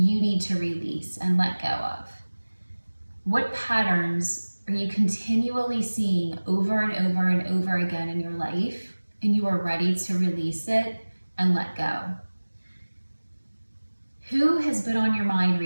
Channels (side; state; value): both; inverted; correlation -1.00